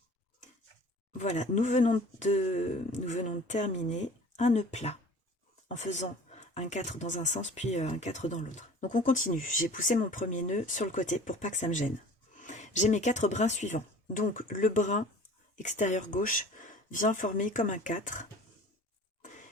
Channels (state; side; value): normal; both; correlation 0.44